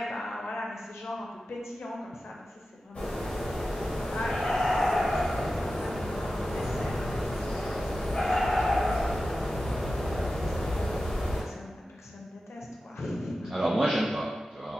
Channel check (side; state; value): both; normal; correlation 0.93